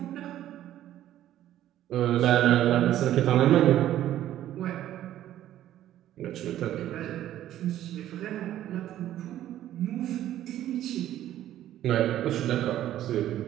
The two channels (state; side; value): quieter; left; 12.6 dB